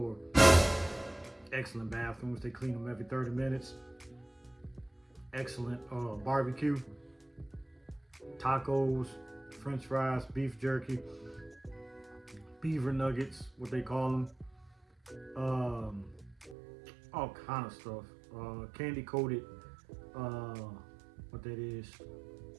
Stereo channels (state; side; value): drops out; left; at 16.6 s